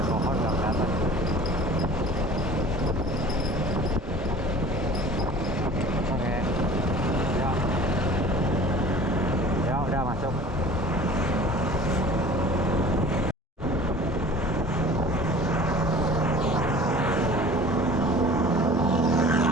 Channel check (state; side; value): normal; both; correlation 0.44